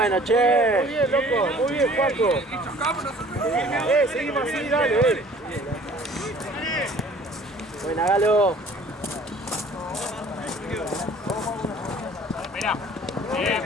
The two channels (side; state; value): both; normal; correlation 0.51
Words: che. Muy bien, loco. Muy bien, Juanco. Seguimos así, dale. Buena, Galo. Bien,